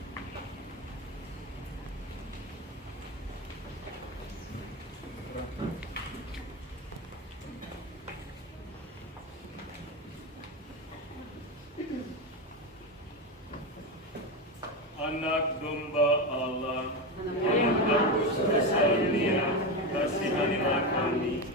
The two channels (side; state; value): both; normal; correlation 0.16